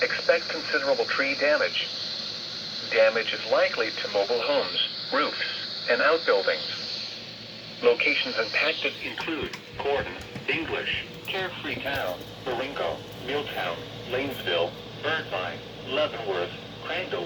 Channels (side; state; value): both; identical; correlation 1.00